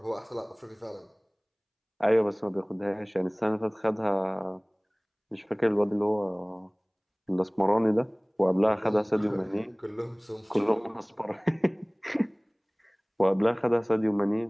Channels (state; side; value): identical; both; correlation 1.00